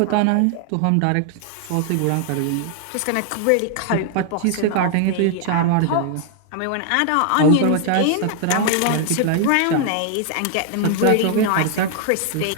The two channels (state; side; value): different; both; correlation 0.00